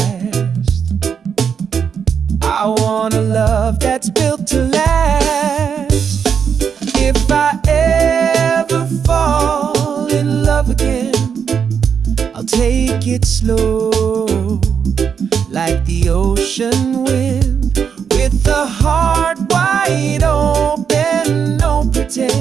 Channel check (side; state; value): left; quieter; 7.0 dB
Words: I want a love that's built to last. If I ever fall in love again, I'll take it slow, like the ocean wind, with the heart wide open, no